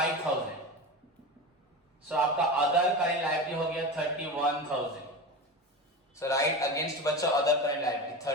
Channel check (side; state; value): both; normal; correlation 0.26